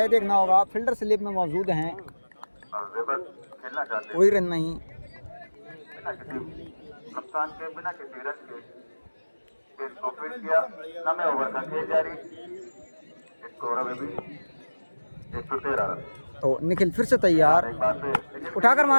देखना होगा फील्डर स्लिप में मौजूद हैं, खेलना चाहते कोई रन नहीं। बिना किसी नुकसान के, बिना किसी रन के इसको फिट किया। 9वें ओवर का खेल जारी। स्कोर अभी भी 113 रन। तो निखिल फिर से तैयार, एक बार फिर उठाकर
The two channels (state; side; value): inverted; both; correlation -1.00